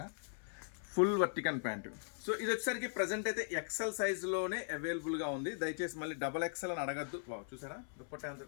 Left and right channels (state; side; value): silent; right; 52 dB below the other